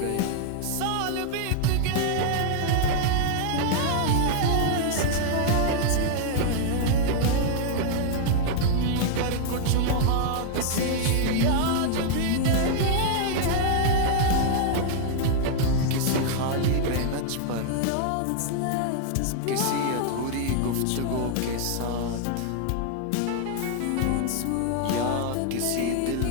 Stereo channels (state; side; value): different; both; correlation 0.00